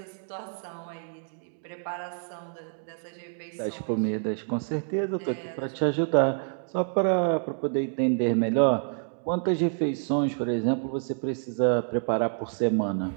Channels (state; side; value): silent; left; digital silence